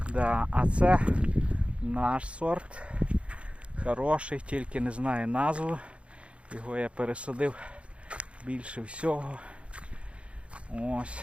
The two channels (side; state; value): left; late; 0.060 ms